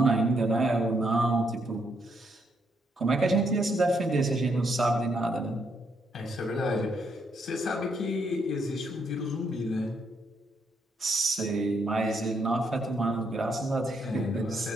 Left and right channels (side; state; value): both; normal; correlation 0.75